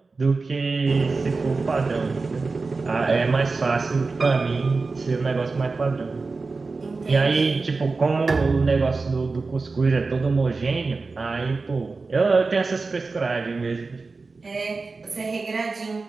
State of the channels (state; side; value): quieter; left; 4.0 dB